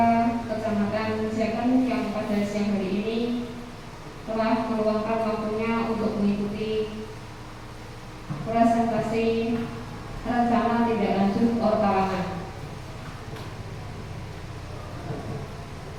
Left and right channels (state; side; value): identical; both; correlation 1.00